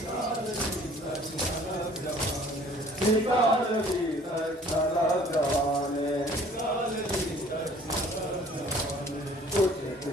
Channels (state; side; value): normal; both; correlation 0.53